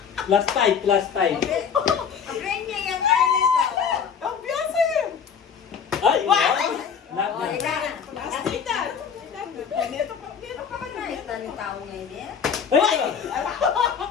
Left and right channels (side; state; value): right; quieter; 7.0 dB